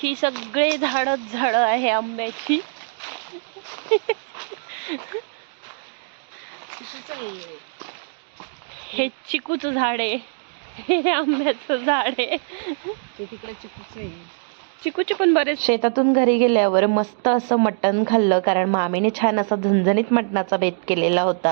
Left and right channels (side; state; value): left; silent; digital silence